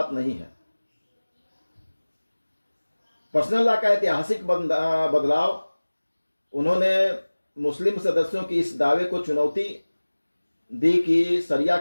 नहीं है। पर्सनल लॉ का ऐतिहासिक बदलाव, उन्होंने मुस्लिम सदस्यों की इस दावे को चुनौती दी कि शरिया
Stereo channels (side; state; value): both; inverted; correlation -1.00